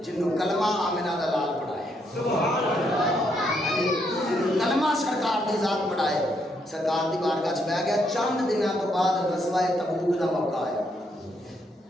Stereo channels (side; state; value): both; normal; correlation 0.75